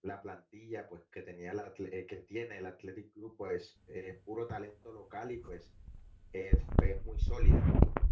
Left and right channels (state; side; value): identical; both; correlation 1.00